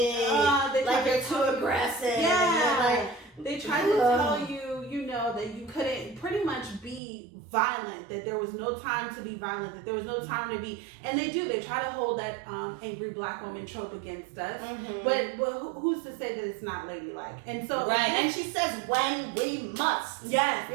Like you're too aggressive. Yeah. They tried to tell you, that you couldn't pretty much be violent, that there was no time to be violent, that there was no time to be, and they try to hold that angry black woman trope against us. But who's to say that it's not ladylike? And so and she says when we must. Yes,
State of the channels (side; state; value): left; drops out; at 7.0 s